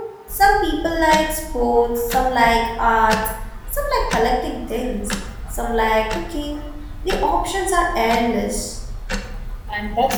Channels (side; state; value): both; identical; correlation 1.00